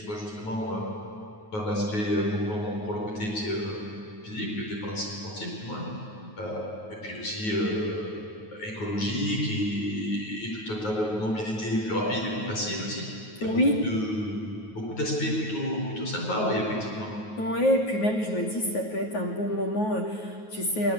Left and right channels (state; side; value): late; right; 9.4 ms